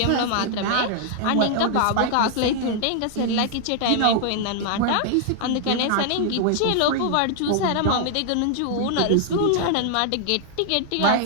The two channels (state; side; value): different; both; correlation 0.00